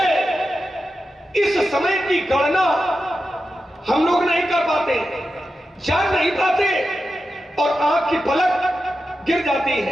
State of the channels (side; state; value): both; normal; correlation 0.90